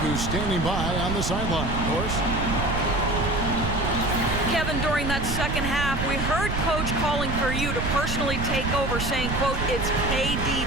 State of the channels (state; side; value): noise; right; rumble, 3 dB below the sound